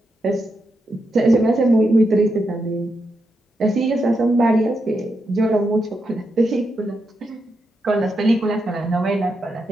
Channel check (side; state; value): both; normal; correlation 0.84